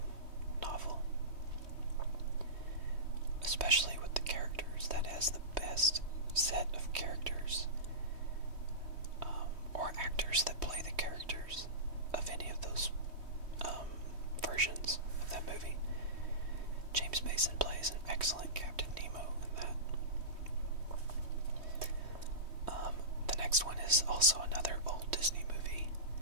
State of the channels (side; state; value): left; late; 3.2 ms